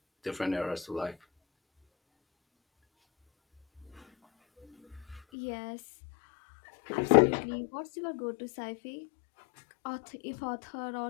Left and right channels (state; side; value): drops out; right; at 5.2 s